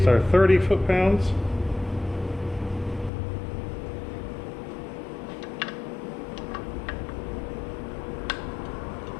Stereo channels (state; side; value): drops out; right; at 3.1 s